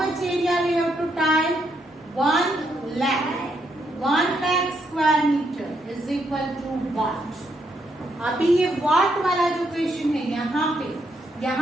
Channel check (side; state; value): both; normal; correlation 0.77